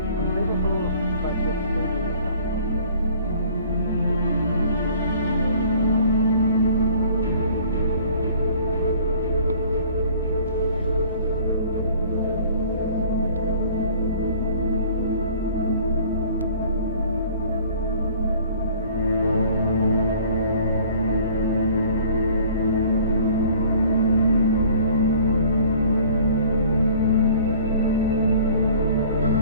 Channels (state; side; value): inverted; both; correlation -0.52